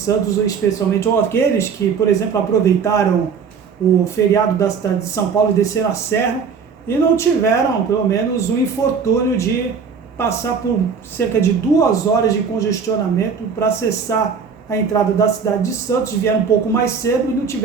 especialmente ou aqueles que, por exemplo, aproveitaram o feriado da cidade de São Paulo e desceram a serra e não tiveram, pelo menos, o infortúnio de passar por cerca de 2 horas de congestionamento para acessar a entrada da cidade de Santos, vieram um pouco mais cedo e não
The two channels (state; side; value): quieter; left; 6.0 dB